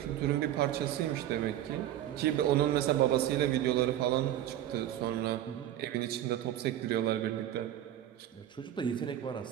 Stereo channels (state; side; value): quieter; left; 12.1 dB